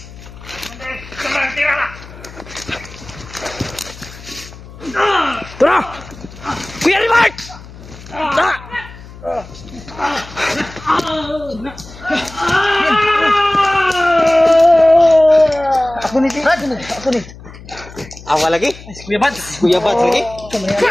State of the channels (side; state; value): left; noise; hum, 17 dB below the sound